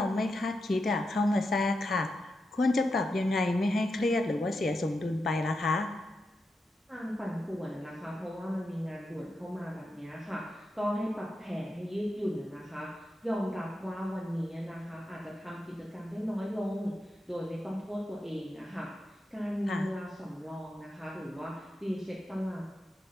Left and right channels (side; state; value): both; normal; correlation 0.87